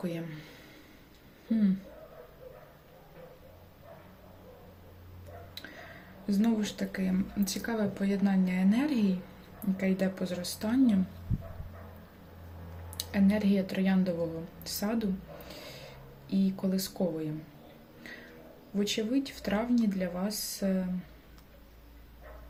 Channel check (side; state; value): both; identical; correlation 1.00